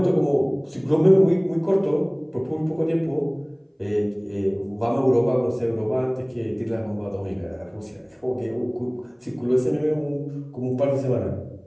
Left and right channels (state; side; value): identical; both; correlation 1.00